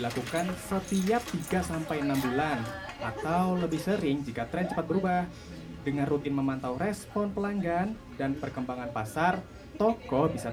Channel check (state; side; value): identical; both; correlation 1.00